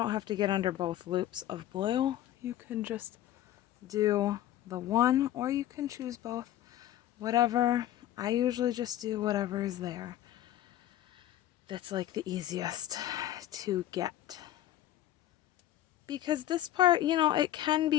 have to get under both loops of blue. You can just do the one, or you can choose both. Whatever. I usually just do whatever is there. That's like the easiest to get. Because this part, you know, it can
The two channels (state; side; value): quieter; right; 13.1 dB